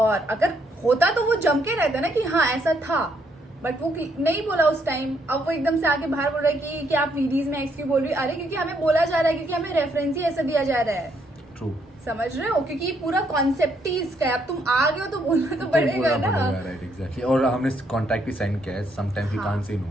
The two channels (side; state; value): both; normal; correlation 0.72